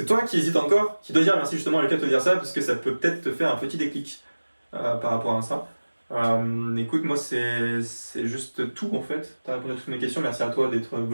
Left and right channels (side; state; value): both; inverted; correlation -1.00